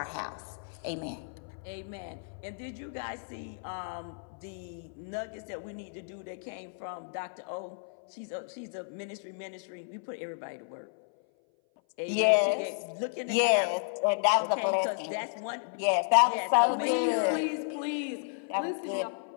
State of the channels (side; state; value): right; silent; 56 dB below the other